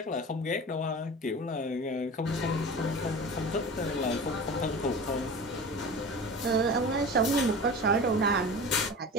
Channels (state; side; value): normal; both; correlation 0.34